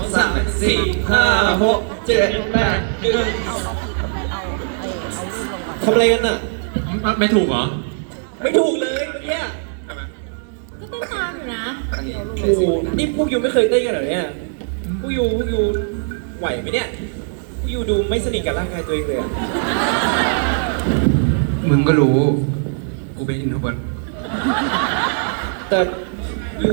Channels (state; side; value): silent; left; digital silence